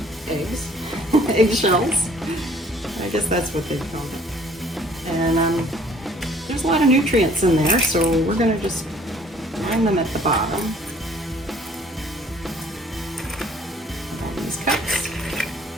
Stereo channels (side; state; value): both; normal; correlation 0.57